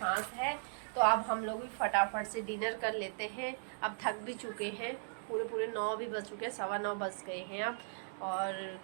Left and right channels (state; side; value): silent; left; digital silence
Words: है। तो अब हम लोग भी फटाफट से डिनर कर लेते हैं। अब थक भी चुके हैं, पूरे 9 भी बज चुके हैं, 9:15 बज गए हैं अब, और